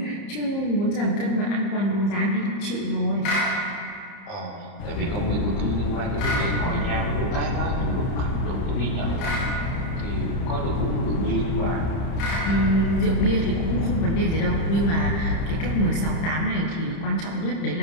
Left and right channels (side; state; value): right; late; 30 ms